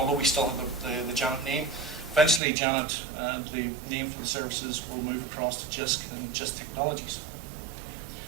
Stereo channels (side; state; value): left; drops out; at 2.4 s